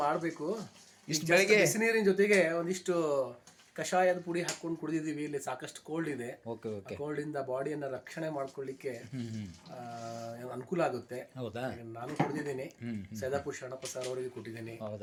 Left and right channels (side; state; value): both; identical; correlation 1.00